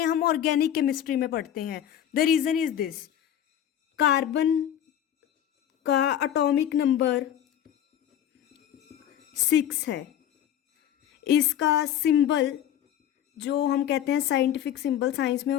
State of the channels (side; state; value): right; quieter; 10.5 dB